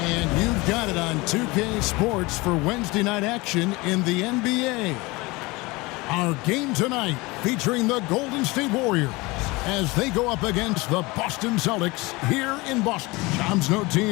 And you've got it on 2K Sports for Wednesday night action in the NBA. Our game tonight featuring the Golden State Warriors as they go up against the Boston Celtics here in Boston. Shams, no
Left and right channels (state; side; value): quieter; right; 23.4 dB